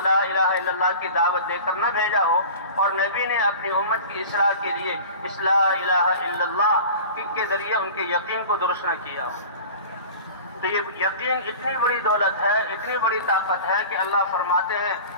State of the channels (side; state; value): both; inverted; correlation -0.38